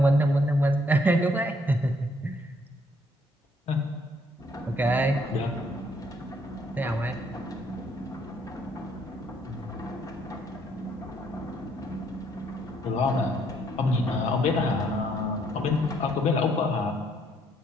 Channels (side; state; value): both; normal; correlation 0.68